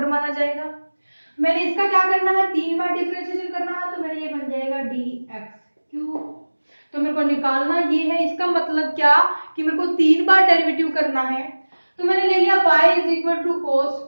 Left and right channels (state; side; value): inverted; both; correlation -1.00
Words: माना जाएगा। मैंने इसका क्या करना है 3 बार डिफरेंशिएशन करना है तो मेरा ये बन जाएगा dx³ तो मेरे को निकालना ये है इसका मतलब क्या कि मेरे को 3 बार डेरिवेटिव करना है तो मैंने ले लिया y is equal to cos